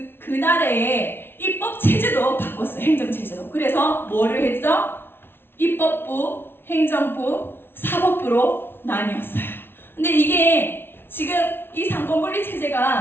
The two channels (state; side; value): late; right; 0.11 ms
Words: 그 나라의 입법 체제도 바꿨어요. 행정 체제도. 그래서 뭐를 했죠? 입법부, 행정부, 사법부로 나뉘었어요. 근데 이게 지금 이 상권분리